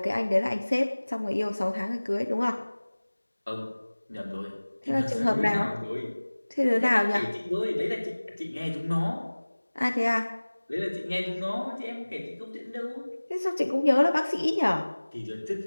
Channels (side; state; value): both; inverted; correlation -1.00